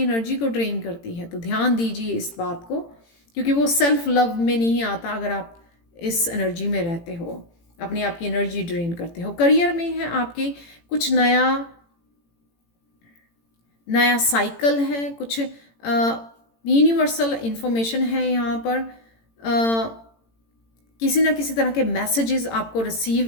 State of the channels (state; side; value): late; right; 18 ms